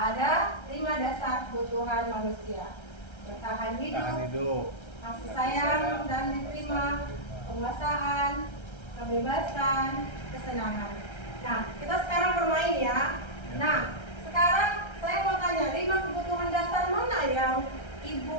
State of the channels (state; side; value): late; right; 1.3 ms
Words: 5 dasar kebutuhan manusia. Bertahan hidup, kasih sayang dan diterima, penguasaan, kebebasan, kesenangan. Nah, kita sekarang bermain ya. Nah, sekarang saya mau tanya, 5 kebutuhan dasar mana yang